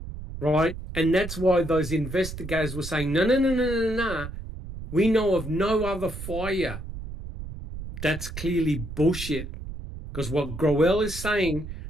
Right? And that's why those investigators were saying, no, no, no, no, no, no. We know of no other fire. That's clearly bullshit. Because what Growell is saying,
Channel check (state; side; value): noise; right; rumble, 9 dB below the sound